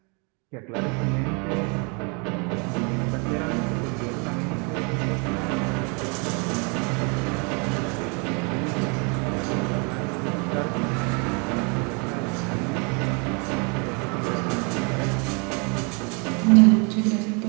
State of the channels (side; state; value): left; quieter; 33.3 dB